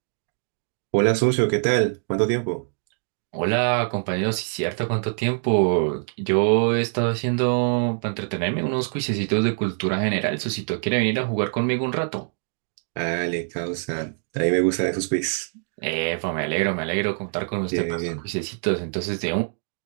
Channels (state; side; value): silent; left; digital silence